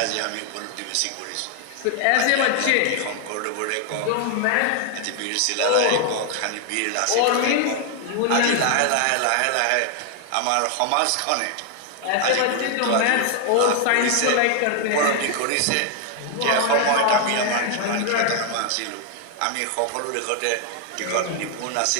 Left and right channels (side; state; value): both; different; correlation 0.00